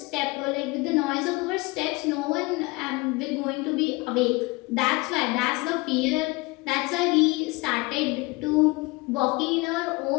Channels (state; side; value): quieter; right; 24.0 dB